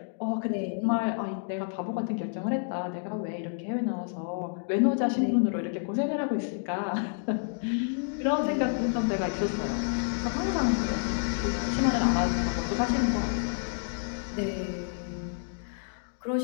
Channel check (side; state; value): right; silent; digital silence